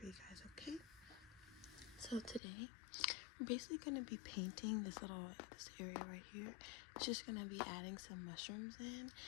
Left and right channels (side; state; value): right; drops out; at 2.4 s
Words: you guys, okay? So today, I'm basically gonna be painting this area right here. It's just gonna be adding some mushrooms in,